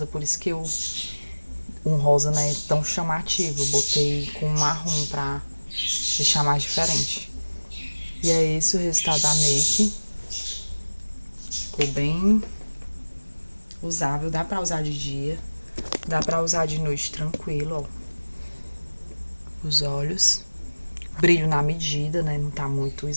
por isso que um rosa não é tão chamativo. Eu botei com marrom pra deixar mais diferente. E é esse o resultado da make. Ficou bem usável, dá pra usar de dia, dá pra usar de noite tranquilo, ó. Os olhos. Brilho na medida, né? Não tá muito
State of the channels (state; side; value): inverted; both; correlation -1.00